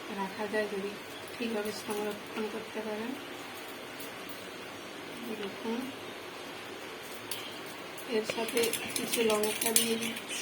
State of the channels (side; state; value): both; identical; correlation 1.00